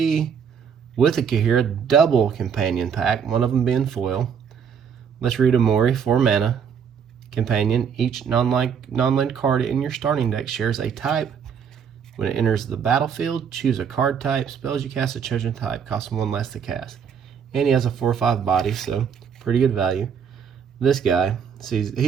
with a Ikoria double companion pack, one of them being foil. Let's read Umori, 4 mana. Companion, each non-land card in your starting deck shares a type. When it enters the battlefield, choose a card type. Spells you cast a chosen type cost 1 less to cast. And he has a 4/5 body, so pretty good value. This guy, he's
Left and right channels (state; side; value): quieter; left; 7.2 dB